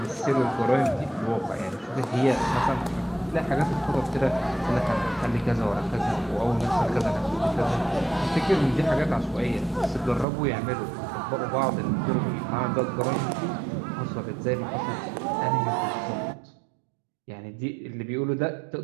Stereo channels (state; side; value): drops out; left; at 10.2 s